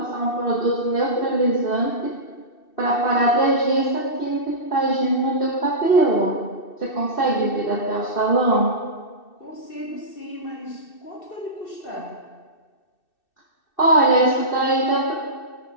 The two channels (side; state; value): right; late; 2.6 ms